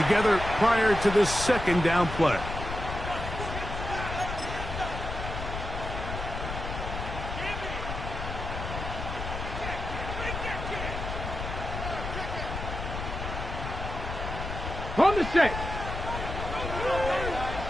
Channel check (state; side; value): noise; left; rumble, 6 dB below the sound